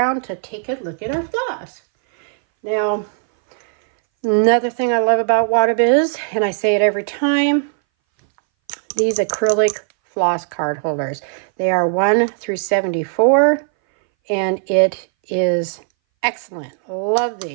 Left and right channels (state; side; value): silent; left; 62 dB below the other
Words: to take a look at our floss. Now, another thing I love about Wattobizz, and I say it every time, these acrylic floss card holders. They are 1 through 74, and it is excellent. Love